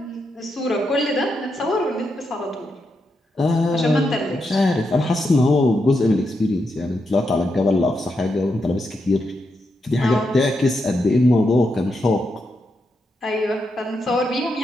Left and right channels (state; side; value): normal; both; correlation 0.84